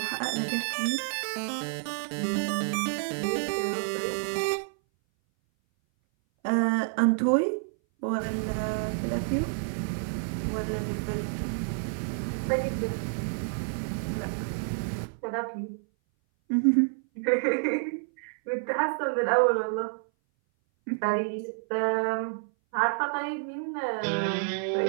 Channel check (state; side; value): silent; left; 57 dB below the other